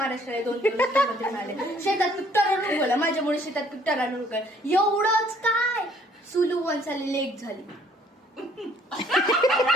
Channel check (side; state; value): both; normal; correlation 0.61